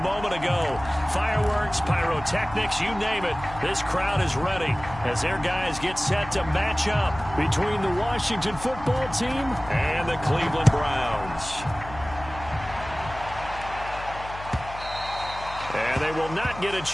ago. Fireworks, pyrotechnics, you name it. This crowd is ready as their guys get set to match up between the Washington football team and the Cleveland Browns. And they will not get a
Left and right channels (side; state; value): left; noise; hum, 14 dB below the sound